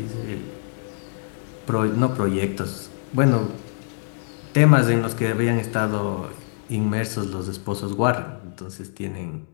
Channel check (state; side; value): silent; right; digital silence